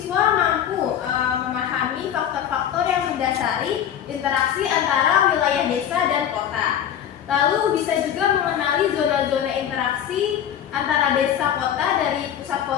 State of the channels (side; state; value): right; quieter; 9.7 dB